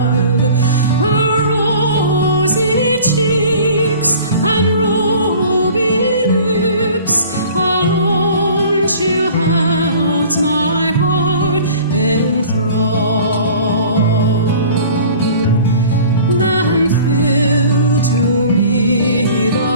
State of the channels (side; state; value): both; inverted; correlation -0.46